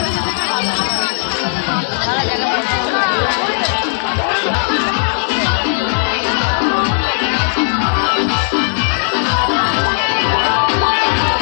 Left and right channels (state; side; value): silent; right; digital silence